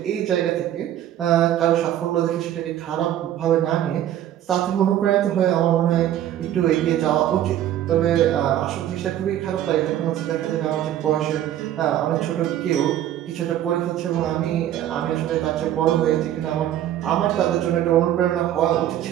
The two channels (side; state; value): left; quieter; 11.8 dB